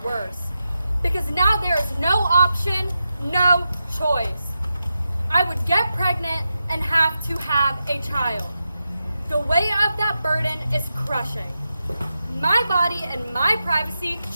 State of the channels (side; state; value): both; inverted; correlation -0.89